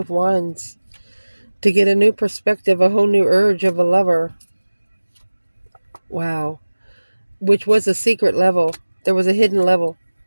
Wands to get a new perspective, a whole new urge of a lover. Wow. Which was a secret level. There was a hidden level.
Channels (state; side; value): inverted; both; correlation -1.00